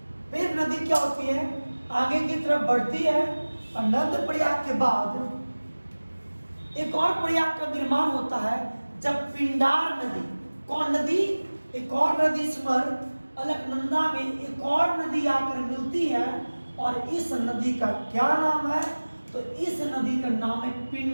फिर नदी क्या होती है? आगे की तरफ बढ़ती है और नंद प्रयाग के बाद एक और प्रयाग का निर्माण होता है जब पिंडार नदी, कौन नदी? एक और नदी स्मर, अलकनंदा में एक और नदी आकर मिलती है और इस नदी का क्या नाम है? तो इस नदी का नाम है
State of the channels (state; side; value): inverted; both; correlation -1.00